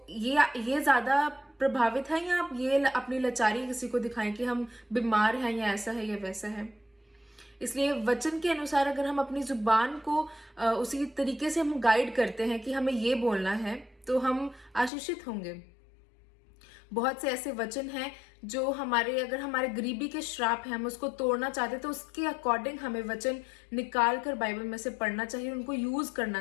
ये ज्यादा प्रभावित है, या आप ये अपनी लाचारी किसी को दिखाएं कि हम बीमार हैं या ऐसा है या वैसा है। इसलिए वचन के अनुसार अगर हम अपनी जुबान को उसी तरीके से हम गाइड करते हैं कि हमें ये बोलना है, तो हम आशीषित होंगे। बहुत से ऐसे वचन हैं जो अगर हमारे गरीबी के श्राप है, हम उसको तोड़ना चाहते हैं, तो उसके अकॉर्डिंग हमें वचन निकाल कर बाइबल में से पढ़ना चाहिए, उनको यूज करना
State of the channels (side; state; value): right; drops out; at 14.9 s